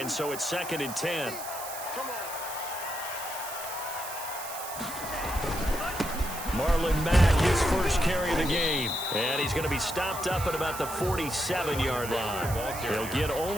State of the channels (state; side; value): noise; right; hiss, 9 dB below the sound